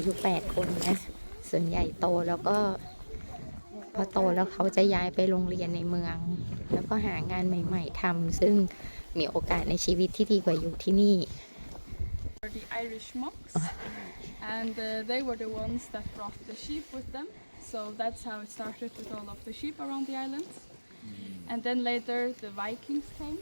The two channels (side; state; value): both; inverted; correlation -1.00